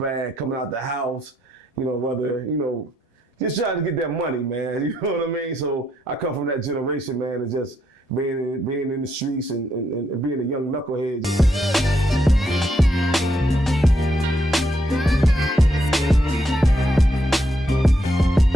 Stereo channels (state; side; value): normal; both; correlation 0.77